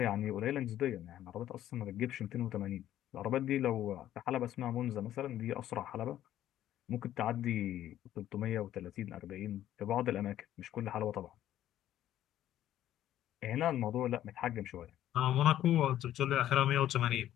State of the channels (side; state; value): right; quieter; 12.4 dB